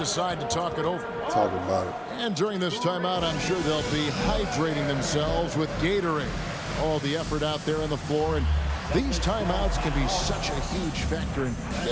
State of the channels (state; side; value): identical; both; correlation 1.00